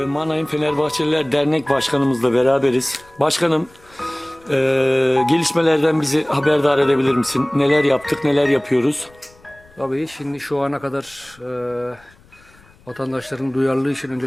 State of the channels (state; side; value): noise; left; rumble, 28 dB below the sound